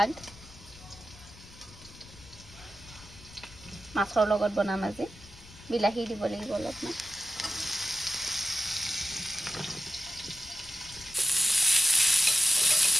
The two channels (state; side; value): noise; left; rumble, 20 dB below the sound